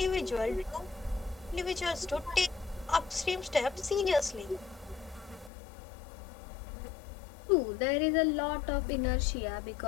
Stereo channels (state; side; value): drops out; right; at 5.5 s